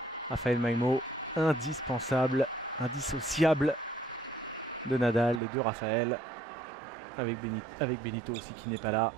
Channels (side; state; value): left; drops out; at 5.4 s